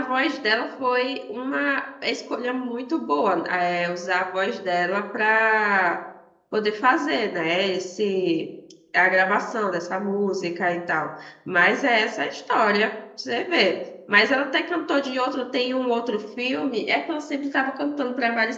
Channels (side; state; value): both; identical; correlation 1.00